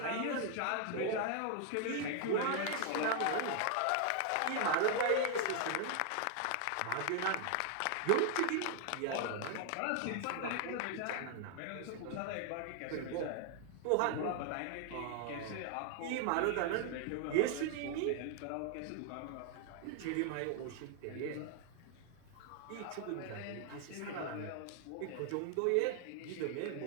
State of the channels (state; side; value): different; both; correlation 0.00